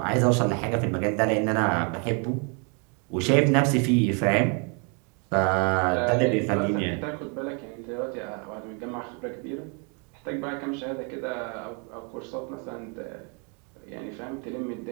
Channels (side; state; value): left; quieter; 36.2 dB